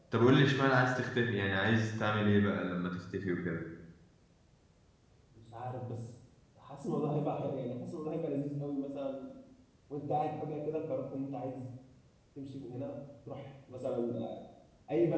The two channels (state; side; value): identical; both; correlation 1.00